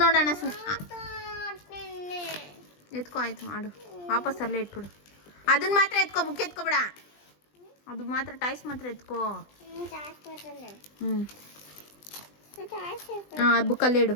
ನೋಡೋಣ. ಎತ್ಕೋ. ಆಯ್ತು, ಆಡು. ವಾಪಸ್ ಅಲ್ಲೇ ಇಟ್ಬಿಡು. ಅದನ್ನ ಮಾತ್ರ ಎತ್ಕೋ, ಬುಕ್ ಎತ್ಕೋಬೇಡ. ಅದು ಮಾತ್ರ, ಟಾಯ್ಸ್ ಮಾತ್ರ ಎತ್ಕೋ. ಬುಕ್ಕಲ್ಲೇ ಇಡು.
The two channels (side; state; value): right; late; 20 ms